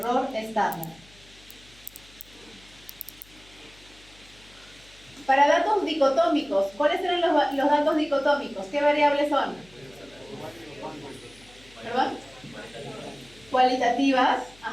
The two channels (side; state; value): left; noise; hum, 26 dB below the sound